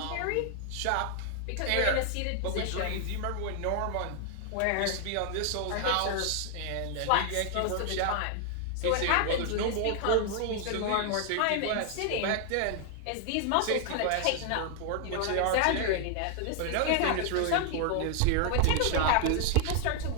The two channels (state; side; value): different; both; correlation 0.00